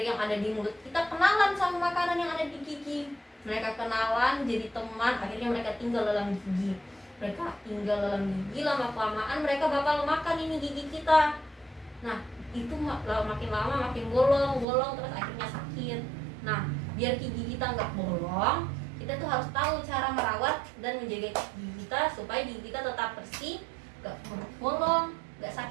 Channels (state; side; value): drops out; left; at 14.7 s